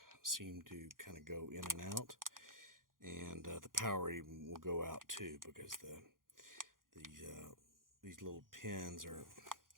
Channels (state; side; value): late; left; 0.90 ms